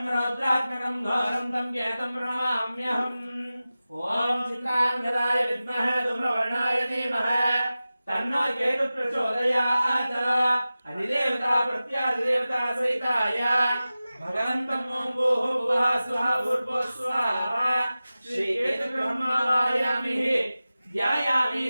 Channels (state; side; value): inverted; both; correlation -0.96